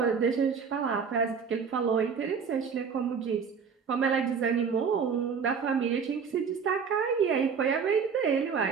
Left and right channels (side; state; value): left; quieter; 6.2 dB